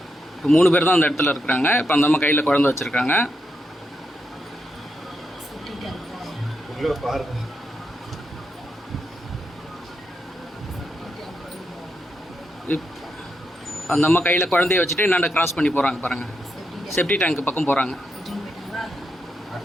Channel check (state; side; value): normal; both; correlation 0.83